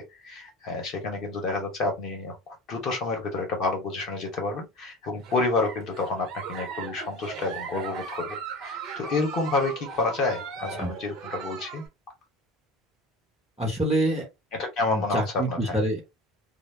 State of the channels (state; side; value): normal; both; correlation 0.36